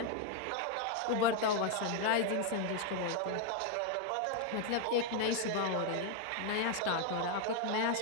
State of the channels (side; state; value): both; different; correlation 0.01